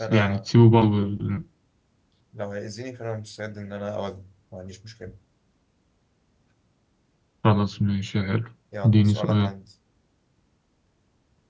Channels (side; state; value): both; identical; correlation 1.00